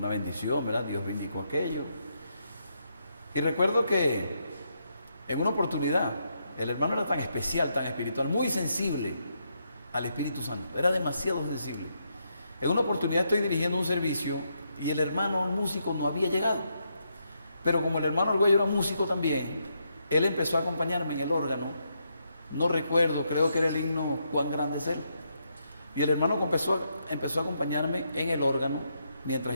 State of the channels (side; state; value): both; inverted; correlation -0.79